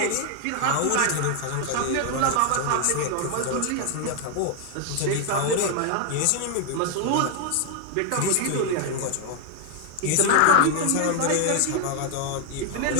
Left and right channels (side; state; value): both; different; correlation 0.00